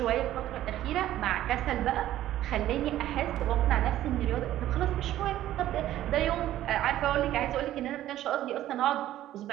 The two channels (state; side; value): quieter; left; 13.4 dB